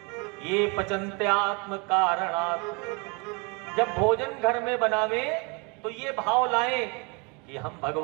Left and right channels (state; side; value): quieter; left; 31.6 dB